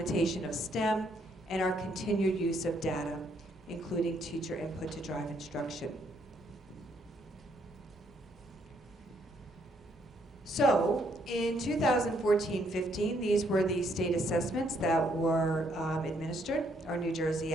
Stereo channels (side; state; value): both; normal; correlation 0.71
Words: of STEM, and our continued use of data, including teacher input to drive instruction. So, in 2014-15, these were the state assessments that were administered. Our New Jersey